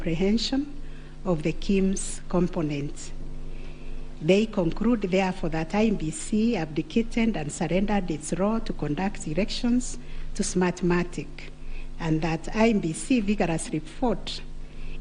of the KIMS components. They conclude, therefore, that IEBC abdicated and surrendered its role to conduct elections to Smartmatic, and that IEBC vigorously fought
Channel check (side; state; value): both; identical; correlation 1.00